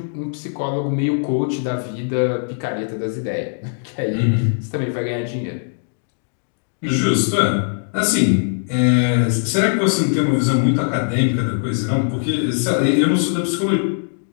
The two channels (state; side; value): silent; right; digital silence